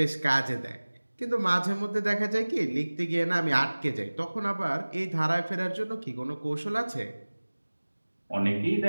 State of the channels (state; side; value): inverted; both; correlation -1.00